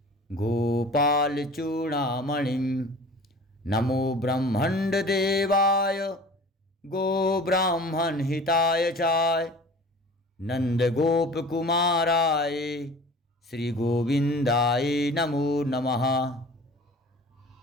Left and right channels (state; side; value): normal; both; correlation 0.43